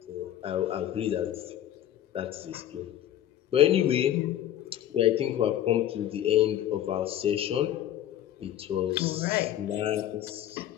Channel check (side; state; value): right; quieter; 11.6 dB